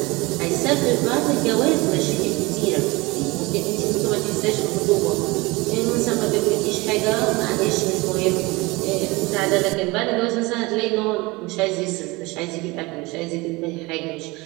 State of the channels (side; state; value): left; quieter; 23.5 dB